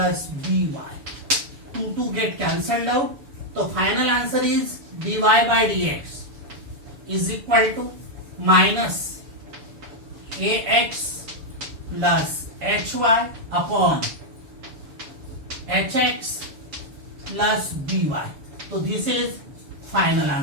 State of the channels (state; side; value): late; left; 7.0 ms